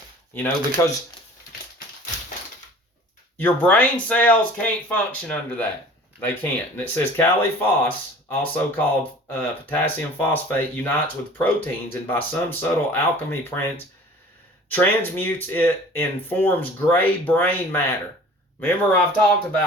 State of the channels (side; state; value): both; normal; correlation 0.45